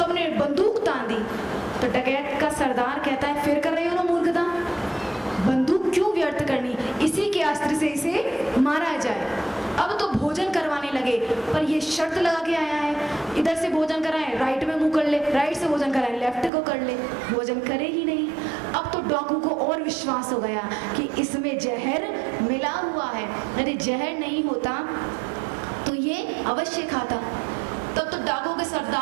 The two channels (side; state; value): left; drops out; at 16.5 s